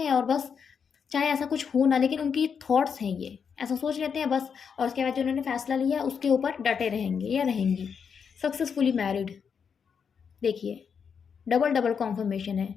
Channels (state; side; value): quieter; right; 6.6 dB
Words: हैं, और बस चाहे ऐसा कुछ हो ना, लेकिन उनकी थॉट्स हैं ये, ऐसा सोच लेते हैं बस, और उसके बाद जो उन्होंने फैसला लिया उसके ऊपर डटे रहेंगे या रहेंगी। Successfully married. देखिए, डबल कॉन्फर्मेशन है,